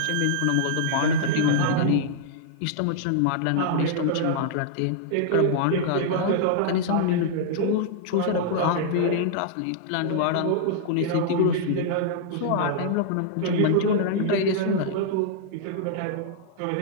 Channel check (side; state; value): both; different; correlation -0.01